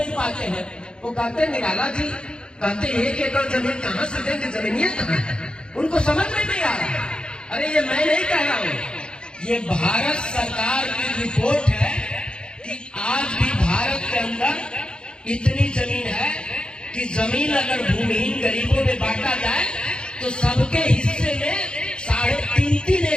पाते हैं, वो कहते निराला जी कहते 1 एकड़ जमीन कहां से देंगे, जमीनियां कहां है, उनको समझ में नहीं आ रहा। अरे ये मैं नहीं कह रहा हूं, ये भारत सरकार की रिपोर्ट है कि आज भी भारत के अंदर इतनी जमीन है कि जमीन अगर भूमिहीन गरीबों में बांटा जाए तो सबके हिस्से में 3.5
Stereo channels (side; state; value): right; late; 0.051 ms